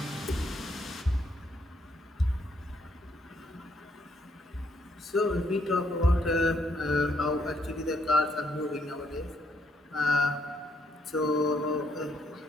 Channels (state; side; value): normal; both; correlation 0.72